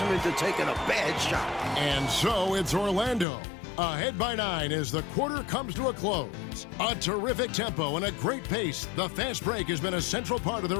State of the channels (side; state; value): right; drops out; at 3.2 s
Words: into taking a bad shot. And so it's Orlando. Ahead by 9 as the quarter comes to a close. A terrific tempo and a great pace. The fast break has been a central part of